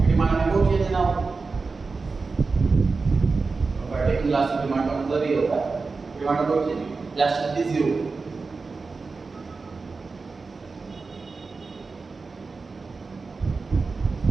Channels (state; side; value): quieter; left; 4.2 dB